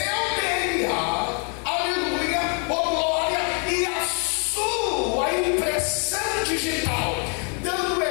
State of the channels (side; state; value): right; quieter; 37.7 dB